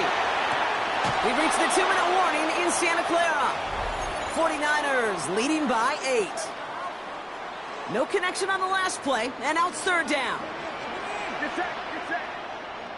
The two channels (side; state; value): both; identical; correlation 1.00